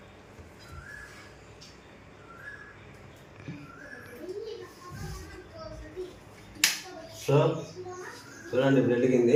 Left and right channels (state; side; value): identical; both; correlation 1.00